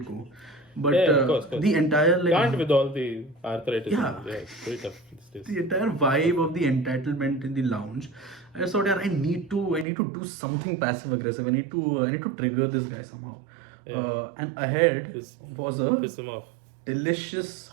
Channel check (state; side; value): drops out; left; at 9.9 s